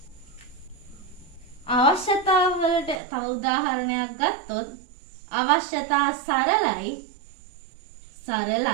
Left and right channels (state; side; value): drops out; left; at 3.0 s